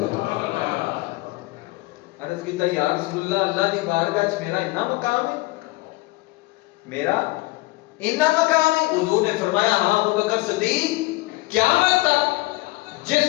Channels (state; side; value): quieter; right; 21.6 dB